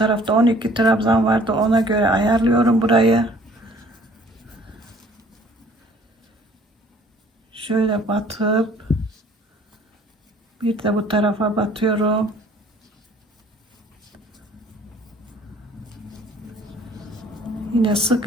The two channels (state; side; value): normal; both; correlation 0.55